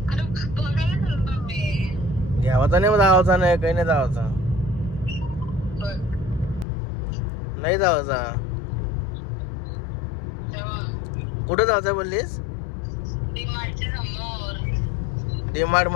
घ्यावाचा नाही जावाचा नाही काही नाही जावाचा नाही जावाचा कुठं जायचं बोललीस डीमार्ट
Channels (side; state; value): right; drops out; at 6.7 s